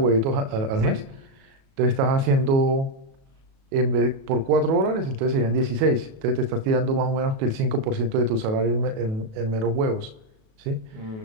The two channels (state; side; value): late; left; 37 ms